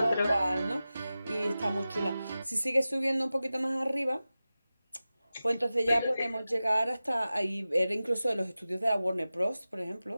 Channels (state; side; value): inverted; both; correlation -0.95